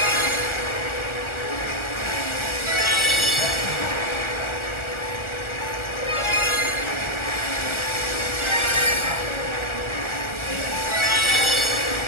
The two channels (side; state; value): right; late; 1.3 ms